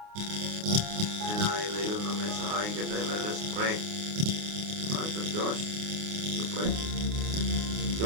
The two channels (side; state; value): left; late; 29 ms